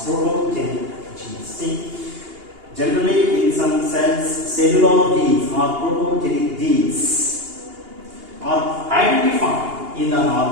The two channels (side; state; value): left; late; 2.8 ms